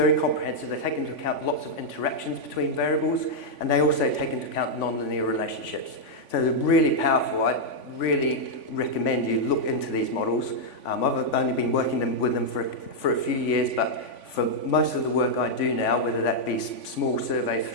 comprehensive. They take into account lots of interactions between variables, and they also take into account nonlinear relationships. So they're really powerful. I really recommend you look into these models. I've only been working with them for a few years, but for most of the work I do now, whether that be small surveys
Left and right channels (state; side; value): late; right; 3.5 ms